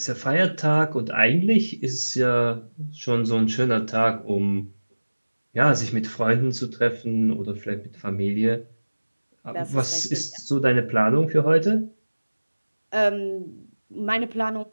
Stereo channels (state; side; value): inverted; both; correlation -1.00